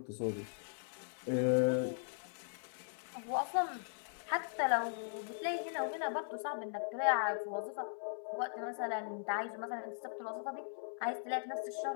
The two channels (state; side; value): silent; right; 52 dB below the other